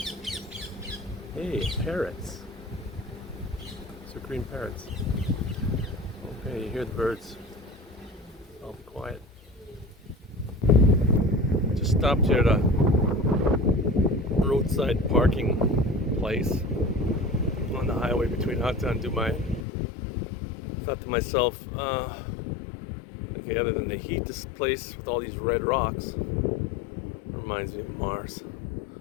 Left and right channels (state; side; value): drops out; right; at 19.7 s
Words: Hey, parrots. These are green parrots. Okay, you hear the birds. I'll be quiet. Just stopped here at a roadside parking place on the highway between Hatta and Dubai. Thought to myself, okay, other than the heat, this place with all these red rocks reminds me of Mars.